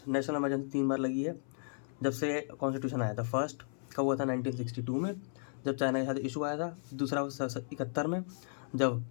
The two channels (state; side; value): silent; right; 55 dB below the other